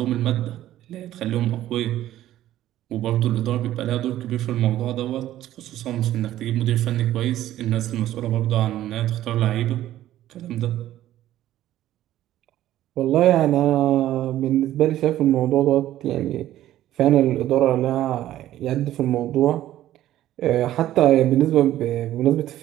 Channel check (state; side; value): quieter; left; 13.4 dB